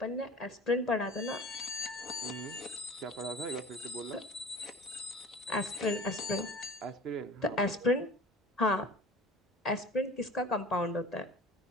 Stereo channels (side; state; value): both; normal; correlation 0.40